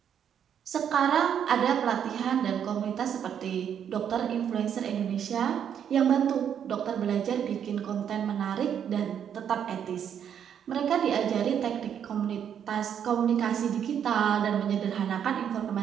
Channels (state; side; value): quieter; left; 8.7 dB